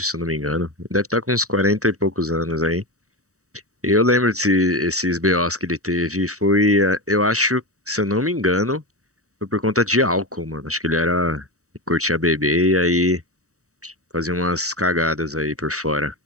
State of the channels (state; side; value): late; left; 0.65 ms